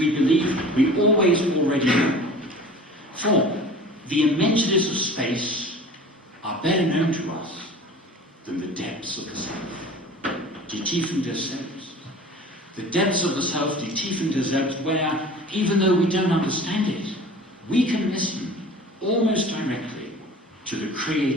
believe we always already know. For the immensities of space are better known to us than the depths of the self, die Tiefen des Selbst. The depths of the self, die Tiefen des Selbst, where, even though we don't understand it, we can listen almost directly to the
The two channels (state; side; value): normal; both; correlation 0.42